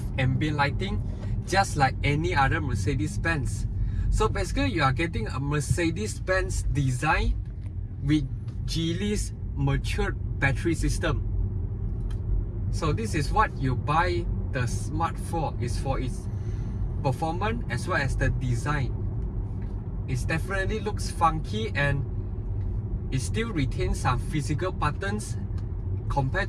of ambient lighting, just like any other Mercedes-Benz. So basically, you are getting a Mercedes-Benz design with Geely's matured battery system. So this is what you buy the Smart for, is for its performance as well as the design. It definitely looks funky, and it still retains some physical buttons compared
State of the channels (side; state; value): both; identical; correlation 1.00